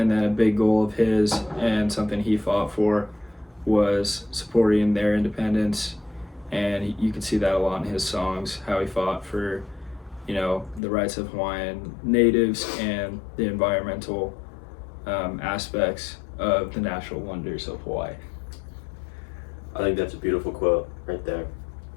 then a big goal of his and something he fought for was supporting their independence. And you can see that a lot in his songs, how he fought for, the rights of Hawaiian natives and the environmental aspects of the natural wonders of Hawaii. I think that's a beautiful quote right there.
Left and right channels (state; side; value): drops out; right; at 10.8 s